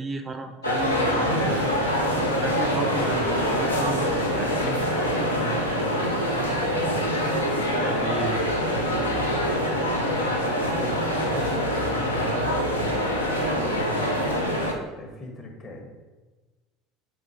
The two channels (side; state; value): both; normal; correlation -0.05